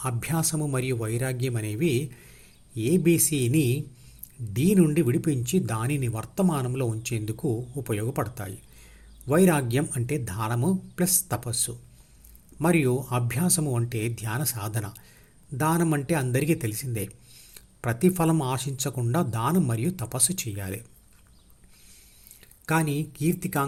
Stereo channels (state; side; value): identical; both; correlation 1.00